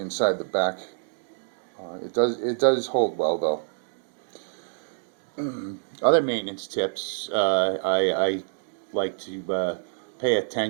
the back. It does hold well though. Other maintenance tips I like to pay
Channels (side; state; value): left; silent; digital silence